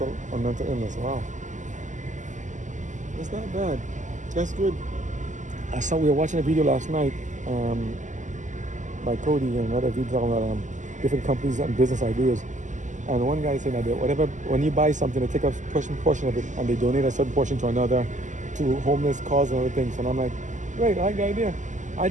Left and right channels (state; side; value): late; left; 0.36 ms